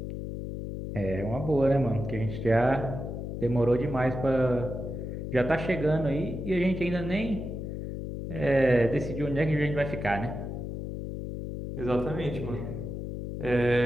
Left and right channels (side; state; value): left; noise; hum, 6 dB below the sound